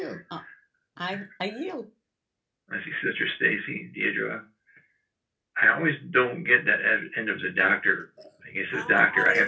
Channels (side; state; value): both; identical; correlation 1.00